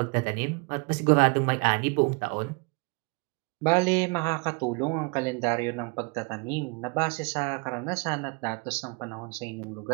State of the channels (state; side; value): quieter; left; 31.2 dB